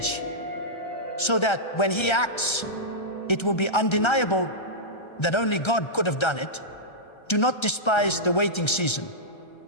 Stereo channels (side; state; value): right; late; 1.3 ms